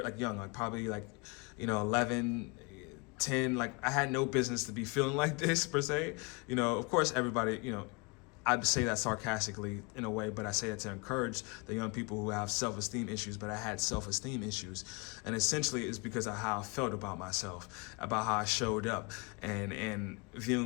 like young, like probably like 11, 10, like I had no business to be feeling like this per se. Of course everybody, I'd say that sarcastically in a way, but I say that to encourage the young people who have self-esteem issues, but I had self-esteem issues. And essentially it's because of how I felt about myself, about how I showed up, and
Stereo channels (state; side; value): quieter; right; 29.9 dB